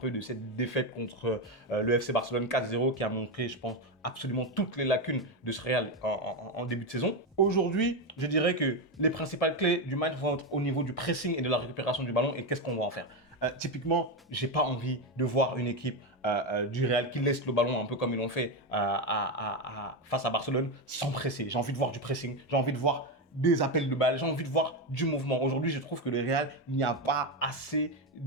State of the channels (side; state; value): both; normal; correlation 0.11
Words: de cette défaite contre le FC Barcelone 4-0 qui a montré, je pense, absolument toutes les lacunes de ce Real en début de saison. Aujourd'hui, je dirais que les principales clés du match vont être au niveau du pressing et de la récupération du ballon et qu'est-ce qu'on va en faire. Typiquement, j'ai pas envie de voir une équipe du Real qui laisse le ballon un peu comme ils l'ont fait face à Barcelone sans presser. J'ai envie de voir du pressing, j'ai envie de voir des appels de balles, j'ai envie de voir du mouvement. Aujourd'hui, je trouve que le Real, il n'y a pas assez